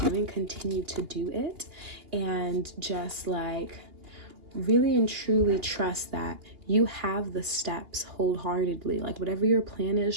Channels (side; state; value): left; late; 2.8 ms